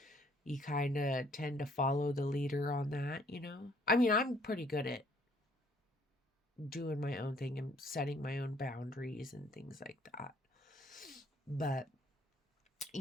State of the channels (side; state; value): both; normal; correlation 0.63